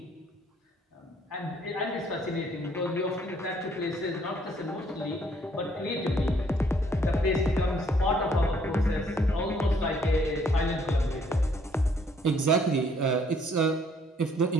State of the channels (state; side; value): normal; both; correlation 0.65